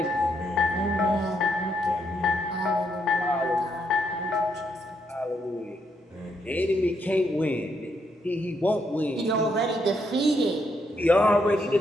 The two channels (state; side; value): normal; both; correlation 0.76